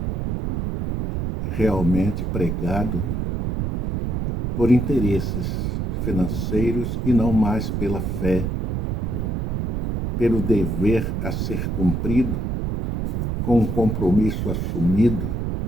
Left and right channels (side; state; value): right; noise; rumble, 1 dB below the sound